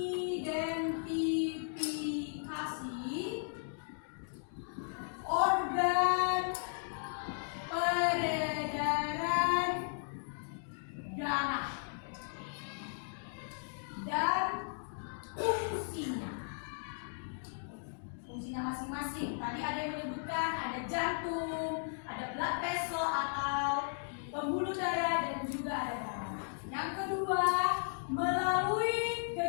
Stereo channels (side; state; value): right; silent; digital silence